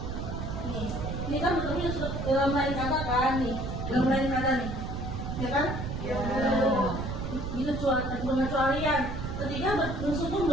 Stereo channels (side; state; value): right; noise; rumble, 4 dB below the sound